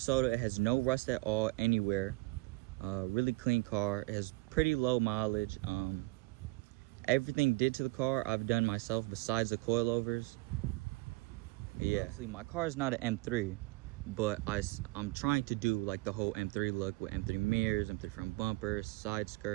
It has no rust at all anywhere. Really clean car. It has pretty low mileage. Everything did to the car I've done myself besides the coilovers. Yeah, actually my car is not an M3, but I'm trying to do like the whole M3 look with M3 mirrors, M3 front bumpers, side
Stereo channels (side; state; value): left; quieter; 23.3 dB